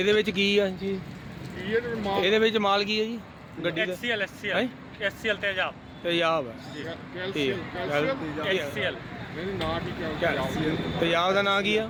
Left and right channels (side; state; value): both; identical; correlation 1.00